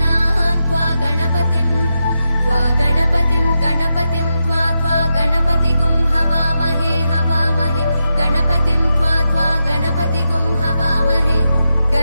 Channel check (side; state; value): both; inverted; correlation -0.87